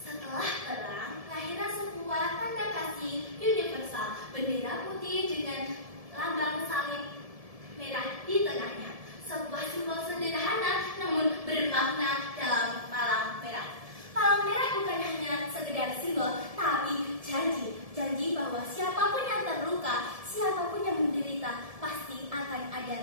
perang, lahirlah sebuah tanda kasih universal, bendera putih dengan lambang salib merah di tengahnya. Sebuah simbol sederhana namun bermakna dalam palang merah. Palang merah bukan hanya sekedar simbol, tapi janji bahwa siapapun yang terluka, siapapun yang menderita, pasti akan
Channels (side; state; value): left; late; 1.7 ms